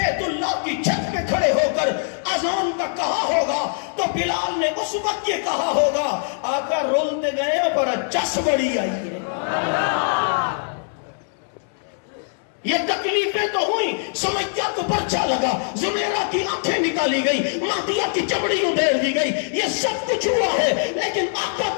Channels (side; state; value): right; silent; 63 dB below the other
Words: اللہ کی چھت پہ کھڑے ہو کر اذان کا کہا ہوگا تو بلال نے اس وقت یہ کہا ہوگا، آقا رولتے گئے پر چس بڑی آئی ہے۔ یہ تکلیفیں تو ہوئی، سمیہ کو پرچا لگا، زمیرہ کی آنکھیں نکالی گئی، مہدیہ کی چمڑی ادھیڑ دی گئی، یہ سب کچھ ہوا ہے، لیکن آقا